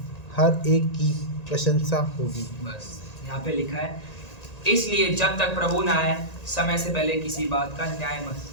हर एक की प्रशंसा होगी। बस यहाँ पे लिखा है, इसलिए जब तक प्रभु न आए समय से पहले किसी बात का न्याय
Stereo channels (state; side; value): late; right; 1.9 ms